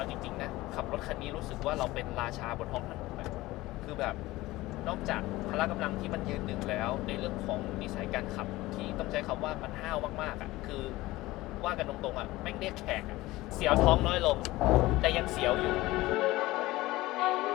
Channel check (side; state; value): right; quieter; 18.6 dB